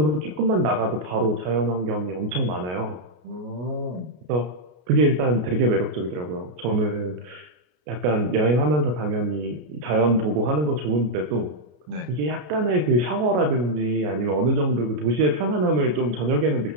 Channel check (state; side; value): late; left; 33 ms